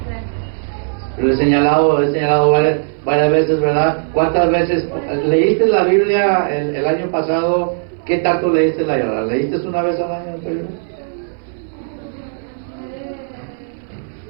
Pero he señalado varias veces, ¿verdad? ¿Cuántas veces leíste la Biblia el año pasado? ¿Qué tanto leíste la Biblia? ¿Leíste una vez al año?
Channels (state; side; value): silent; left; 61 dB below the other